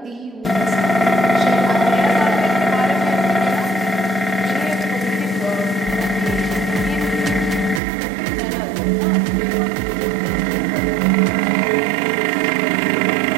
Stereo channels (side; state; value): left; drops out; at 7.8 s